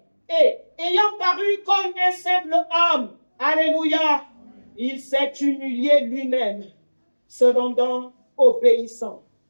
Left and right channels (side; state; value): both; inverted; correlation -1.00